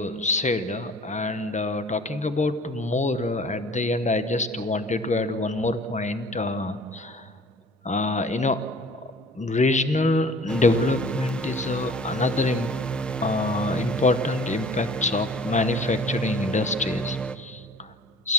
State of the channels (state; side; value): normal; both; correlation 0.48